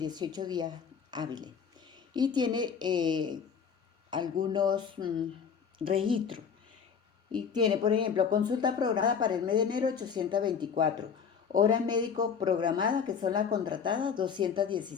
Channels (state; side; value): quieter; right; 6.8 dB